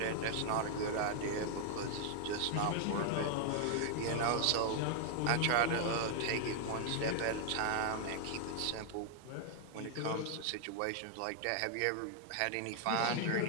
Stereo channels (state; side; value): different; both; correlation 0.00